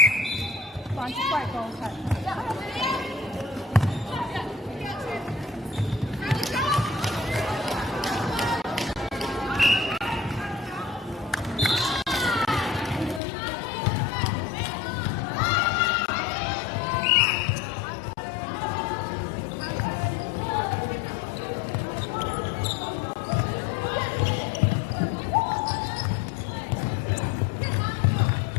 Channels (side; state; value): right; drops out; at 13.2 s